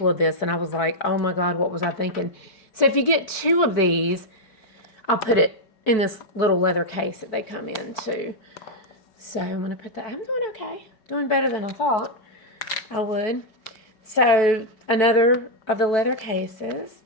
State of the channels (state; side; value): late; right; 4.6 ms